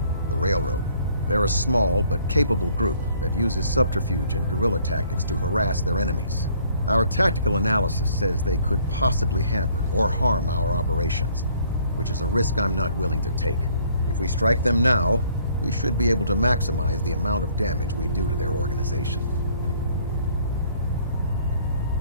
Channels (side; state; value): both; inverted; correlation -0.61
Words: the Railroad. They're a small but capable group that uses subterfuge and guerrilla tactics to harass their enemies. Our tactical analysis says they could possibly hamper or harm our operations, which is a risk I'm not willing to take. If we strike them now, we should be able to maximize the amount of damage we do to their organization.